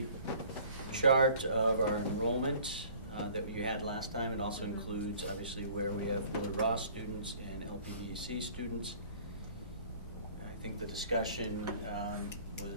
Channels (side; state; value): both; inverted; correlation -0.51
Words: chart of our enrollment that you had last time. It also includes, obviously, where we have Willard Ross students and LPDC students. I think the discussion